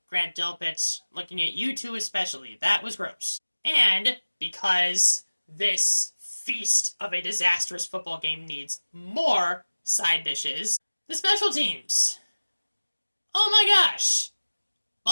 Grant Delpit, looking at you two especially. That was gross. And because this feast of a disastrous football game needs more side dishes, the special teams. Oh my gosh!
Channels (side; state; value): both; inverted; correlation -1.00